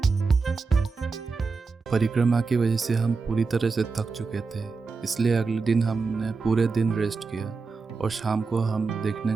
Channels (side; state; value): left; quieter; 4.5 dB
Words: परिक्रमा की वजह से हम पूरी तरह से थक चुके थे, इसलिए अगले दिन हमने पूरे दिन रेस्ट किया और शाम को हम देखने